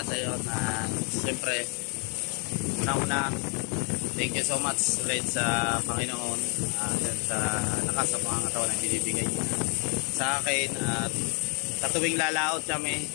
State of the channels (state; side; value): quieter; right; 36.0 dB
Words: sa iyo na siyempre una-una thank you so much ulit sa Panginoon sa lakas sa pangangatawan na binibigay sa akin at sa tuwing lalaot kami